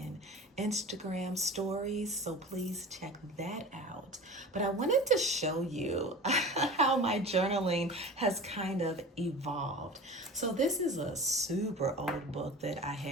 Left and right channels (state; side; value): normal; both; correlation 0.36